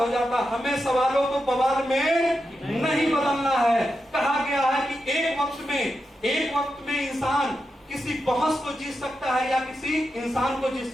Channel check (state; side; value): normal; both; correlation 0.88